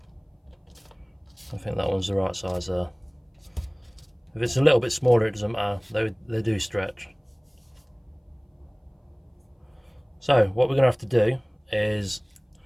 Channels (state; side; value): identical; both; correlation 1.00